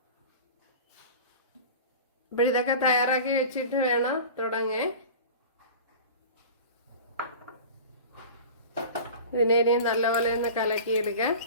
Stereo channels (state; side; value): inverted; both; correlation -0.36